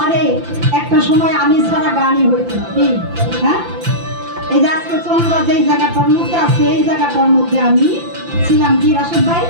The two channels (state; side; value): late; left; 5.8 ms